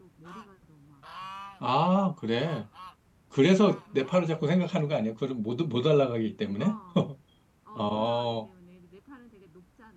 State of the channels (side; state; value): both; identical; correlation 1.00